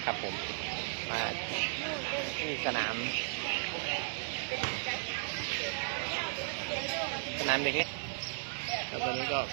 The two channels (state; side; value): silent; left; 54 dB below the other